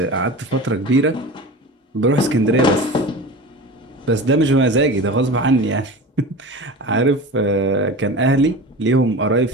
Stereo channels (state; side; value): normal; both; correlation 0.32